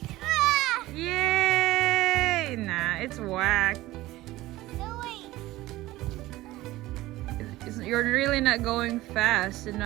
Yay! Nah, it's whack. No, wait. You're really not going fast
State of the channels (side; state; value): left; quieter; 17.4 dB